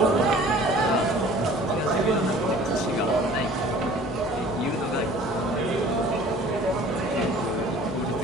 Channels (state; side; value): normal; both; correlation 0.49